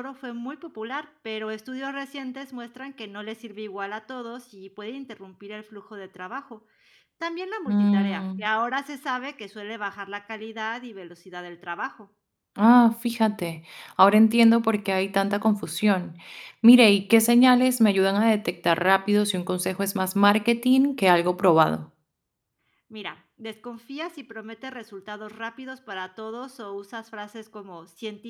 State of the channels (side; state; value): both; identical; correlation 1.00